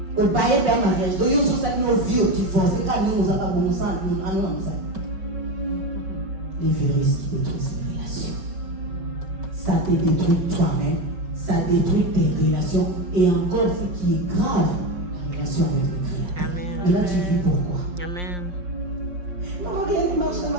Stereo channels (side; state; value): left; late; 5.6 ms